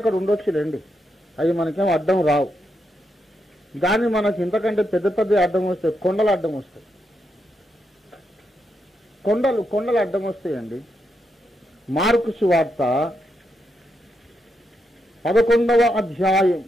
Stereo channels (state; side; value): normal; both; correlation 0.82